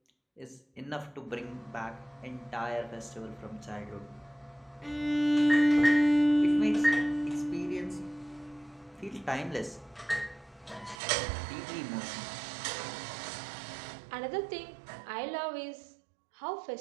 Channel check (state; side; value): drops out; left; at 11.0 s